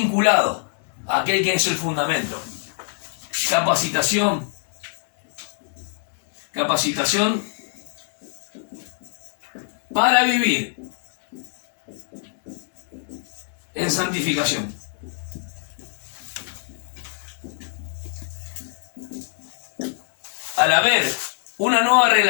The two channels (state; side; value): silent; right; digital silence